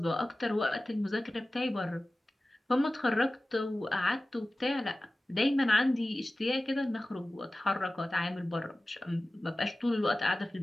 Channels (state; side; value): normal; both; correlation 0.96